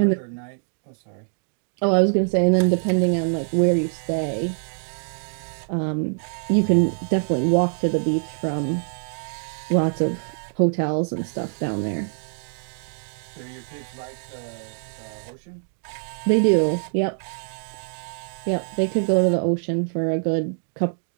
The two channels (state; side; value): silent; left; digital silence